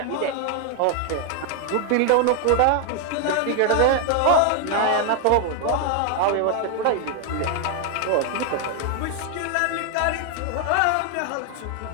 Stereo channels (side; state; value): both; different; correlation 0.00